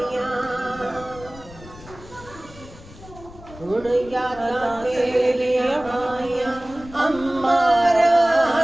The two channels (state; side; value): noise; left; rumble, 18 dB below the sound